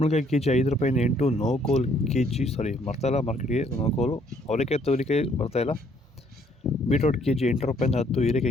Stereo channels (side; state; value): both; normal; correlation 0.65